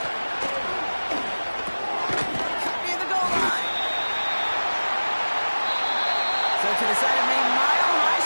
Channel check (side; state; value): both; inverted; correlation -1.00